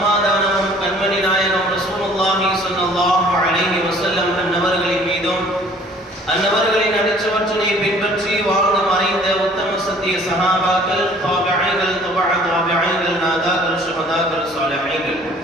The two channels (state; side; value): normal; both; correlation 0.54